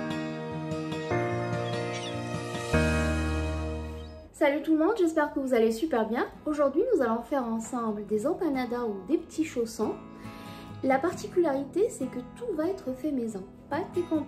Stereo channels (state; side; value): identical; both; correlation 1.00